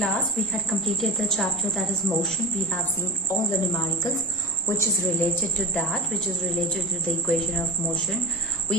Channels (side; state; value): both; normal; correlation 0.29